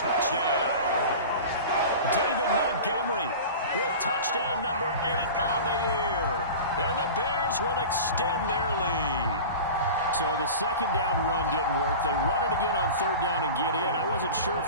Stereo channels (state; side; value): inverted; both; correlation -0.34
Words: David Montgomery with touchdown number 8 on the year. And the Bears will extend their lead. So the 2nd down run didn't work. They run it again on 3rd down and get in. I wasn't sure